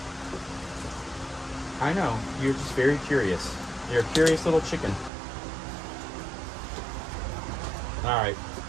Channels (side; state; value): left; drops out; at 5.1 s